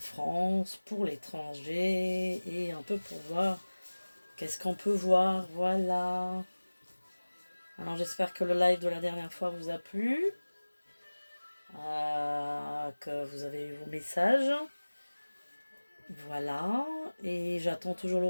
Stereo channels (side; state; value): both; inverted; correlation -1.00